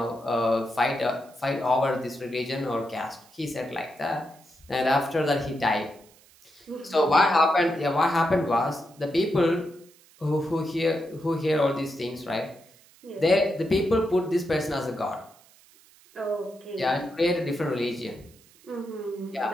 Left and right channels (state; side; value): noise; right; hiss, 27 dB below the sound